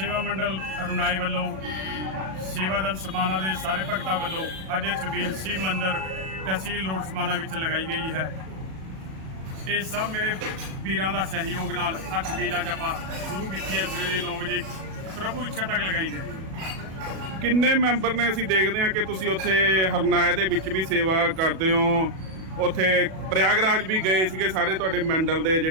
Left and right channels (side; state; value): left; late; 37 ms